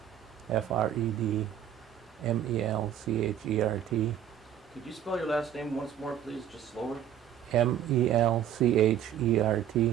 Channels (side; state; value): left; quieter; 9.9 dB